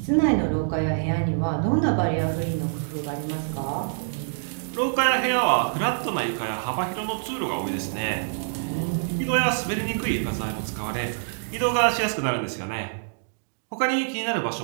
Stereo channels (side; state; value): left; silent; digital silence